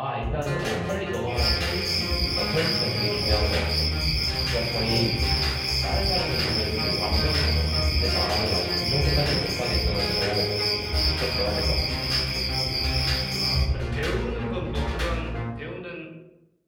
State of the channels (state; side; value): identical; both; correlation 1.00